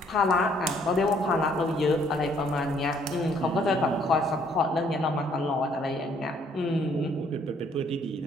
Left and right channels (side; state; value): both; normal; correlation 0.64